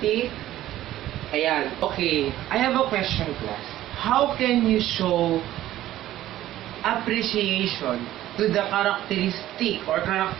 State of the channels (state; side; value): quieter; left; 13.9 dB